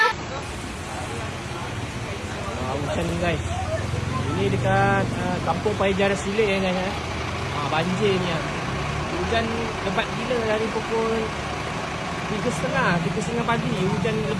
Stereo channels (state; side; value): identical; both; correlation 1.00